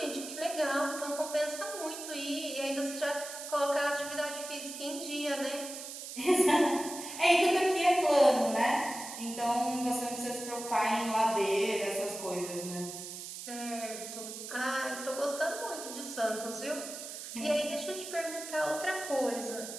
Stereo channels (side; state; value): right; noise; hiss, 9 dB below the sound